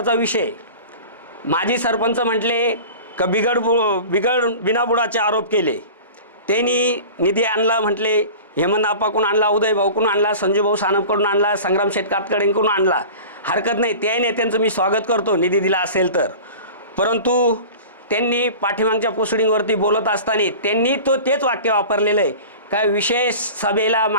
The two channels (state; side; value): inverted; both; correlation -0.38